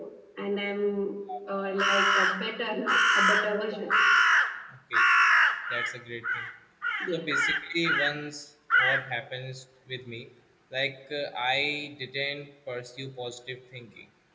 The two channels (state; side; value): identical; both; correlation 1.00